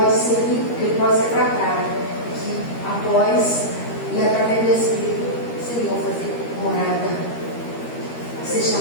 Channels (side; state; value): right; late; 13 ms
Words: ser limpo, que ele pode ser tratado, que após e através do Espírito, Senhor, fazer morada, ser